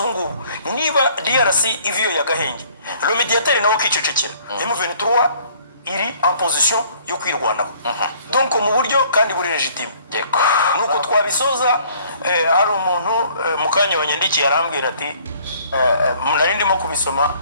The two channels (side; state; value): both; inverted; correlation -0.58